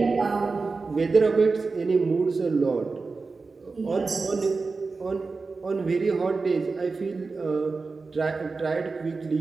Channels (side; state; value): left; quieter; 4.1 dB